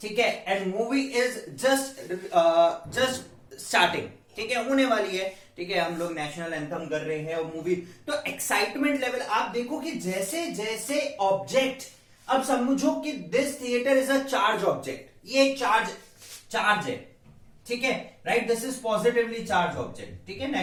है, and movie is just starting, ठीक है, होने वाली है। ठीक है, हम लोग नेशनल एंथम कर रहे हैं और मूवी, तो एक्साइटमेंट लेवल आप देखो कि जैसे जैसे ऑब्जेक्ट, अब समझो कि this theatre is a charge object, ये चार्ज है। ठीक है, right, this is positively charge object. ठीक है,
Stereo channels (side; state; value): both; identical; correlation 1.00